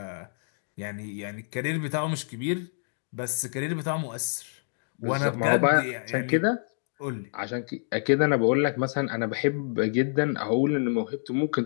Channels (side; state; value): right; silent; digital silence